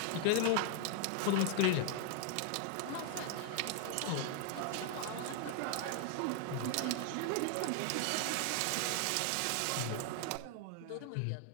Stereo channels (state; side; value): different; both; correlation 0.00